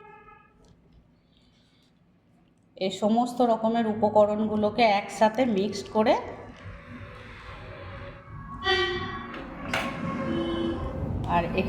এই সমস্ত রকমের উপকরণগুলোকে একসাথে মিক্সড করে আর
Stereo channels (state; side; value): identical; both; correlation 1.00